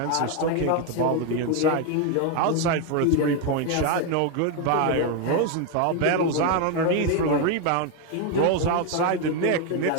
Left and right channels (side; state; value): both; different; correlation 0.01